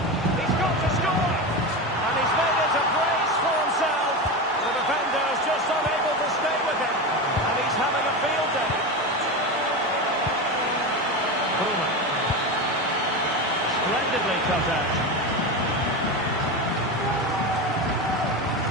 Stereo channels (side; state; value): both; normal; correlation 0.20